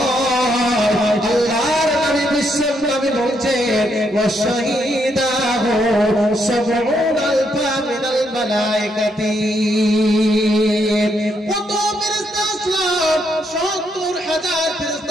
আল্লাহর নবী বিশ্ব নবী বলছেন, ওয়া শাহিদাহু সাবউন আলফা মিনাল মালায়েকাতি। কত ফেরেশতা আসলাম, 70,000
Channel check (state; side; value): normal; both; correlation 0.76